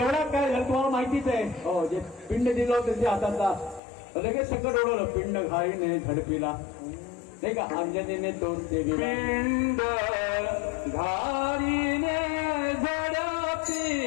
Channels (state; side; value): drops out; right; at 3.8 s